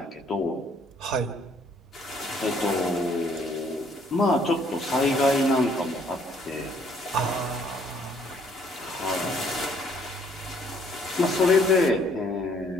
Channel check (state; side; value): normal; both; correlation 0.64